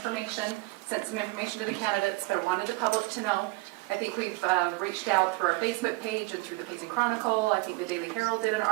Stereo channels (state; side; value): quieter; left; 23.1 dB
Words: sent some information to the candidates, but I wanted the public to know. I think we've reached out through our Facebook page and through the Payson Chronicle. I think the Daily Herald did an